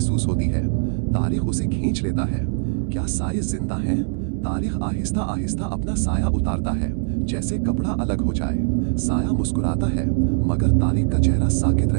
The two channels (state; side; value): silent; left; digital silence